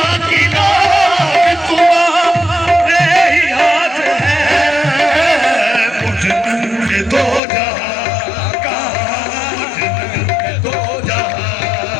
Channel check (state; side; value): drops out; right; at 7.4 s